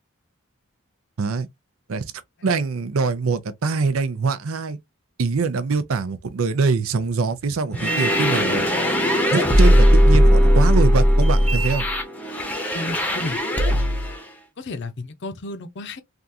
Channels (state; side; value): normal; both; correlation 0.77